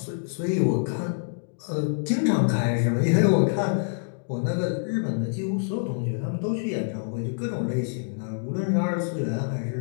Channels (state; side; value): silent; right; digital silence